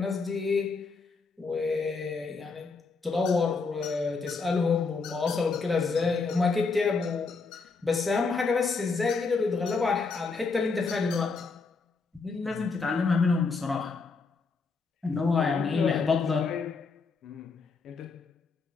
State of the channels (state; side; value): quieter; right; 4.5 dB